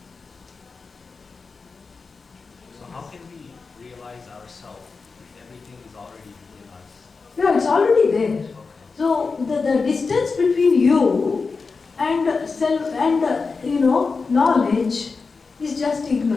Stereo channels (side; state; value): right; quieter; 4.5 dB